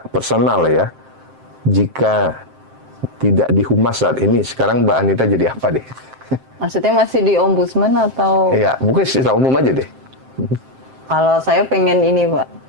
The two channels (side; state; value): left; late; 7.6 ms